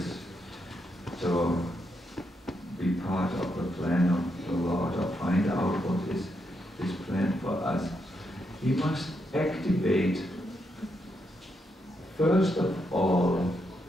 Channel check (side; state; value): both; normal; correlation 0.81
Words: to be part of the plan of the Lord or find out what is His plan for us, we must activate, first of all,